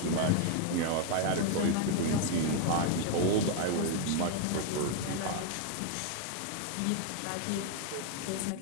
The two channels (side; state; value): both; different; correlation 0.00